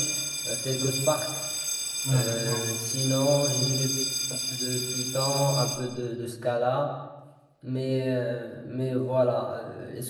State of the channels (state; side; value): identical; both; correlation 1.00